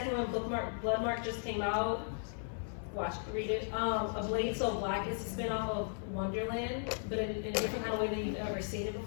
one, Bloodmark just came out. Read it. A Blade So Black is a spin-off of Wonderland, but in a different kind of way than you've ever seen it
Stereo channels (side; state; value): right; silent; 54 dB below the other